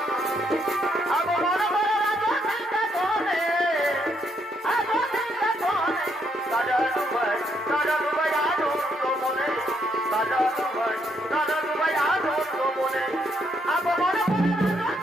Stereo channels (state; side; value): normal; both; correlation 0.74